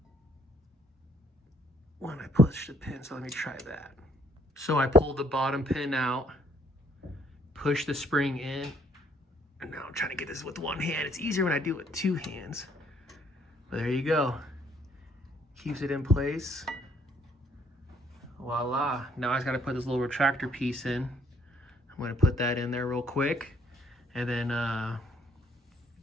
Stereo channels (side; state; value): both; normal; correlation 0.65